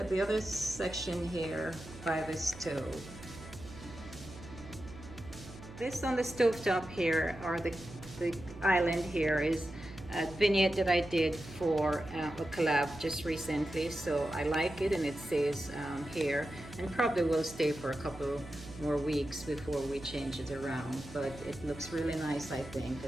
the other section here by the stove. This on the stovetop here, or the island here, is a vignette that I did for a collab just recently. So I like it, and it says here, and probably will stay for a couple more weeks before we change it around. But it looks really nice, I think.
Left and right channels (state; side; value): noise; right; hum, 15 dB below the sound